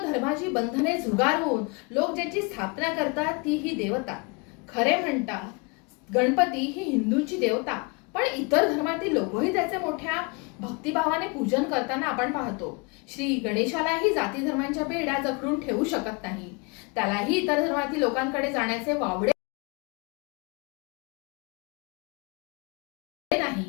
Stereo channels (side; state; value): right; quieter; 30.3 dB